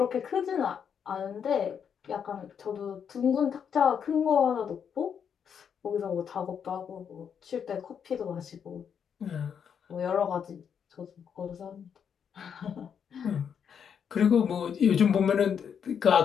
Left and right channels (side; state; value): right; quieter; 7.6 dB